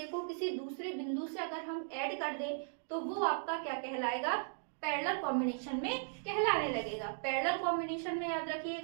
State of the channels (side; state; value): left; silent; digital silence